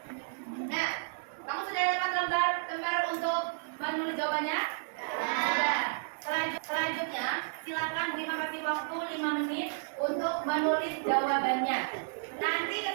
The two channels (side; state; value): left; silent; digital silence